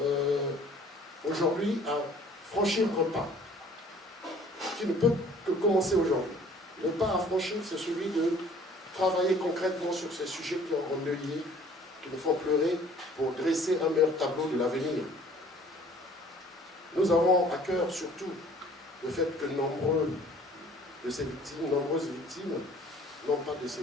aujourd'hui à franchir un pas qui ne peut que commencer aujourd'hui. Le pas à franchir, c'est celui de travailler concrètement sur ces sujets qui ont endeuillé, qui nous font pleurer, pour dresser un meilleur tableau de l'avenir. Nous avons à cœur surtout le fait que nombreuses victimes n'ont pas de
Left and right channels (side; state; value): both; normal; correlation 0.53